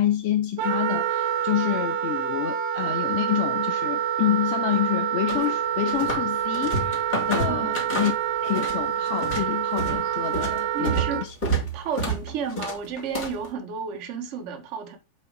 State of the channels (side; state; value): left; late; 3.5 ms